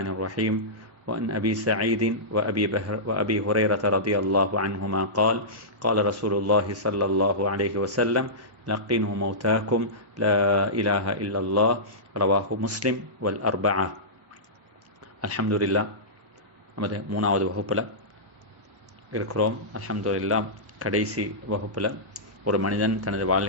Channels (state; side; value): normal; both; correlation -0.16